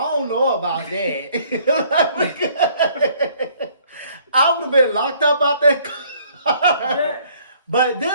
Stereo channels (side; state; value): both; inverted; correlation -0.61